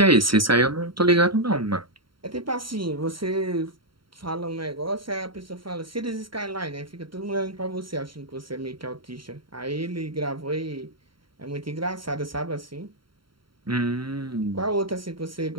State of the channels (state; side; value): late; left; 0.73 ms